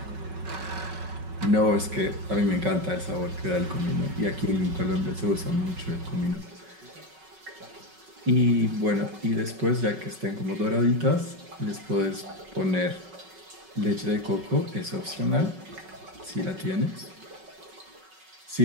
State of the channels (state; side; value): late; left; 5.3 ms